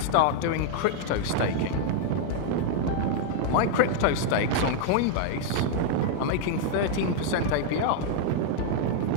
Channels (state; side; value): different; both; correlation 0.00